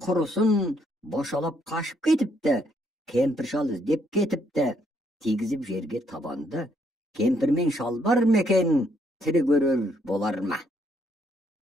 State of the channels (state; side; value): normal; both; correlation 0.72